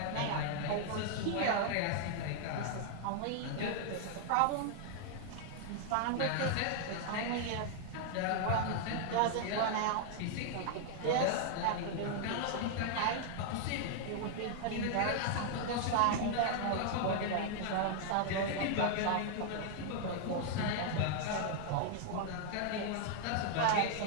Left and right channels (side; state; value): both; different; correlation 0.00